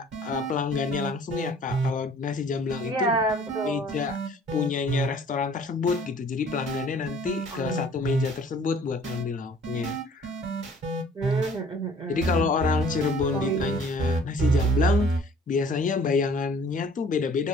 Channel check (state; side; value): normal; both; correlation 0.53